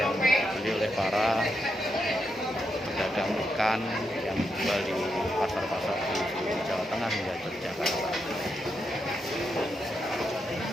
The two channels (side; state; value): both; normal; correlation 0.83